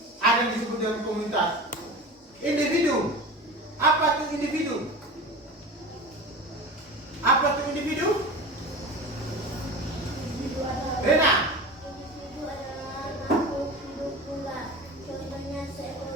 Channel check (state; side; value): normal; both; correlation 0.32